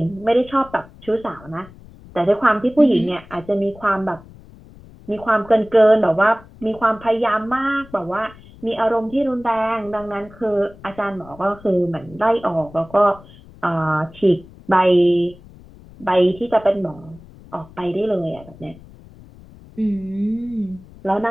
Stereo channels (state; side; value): noise; left; rumble, 22 dB below the sound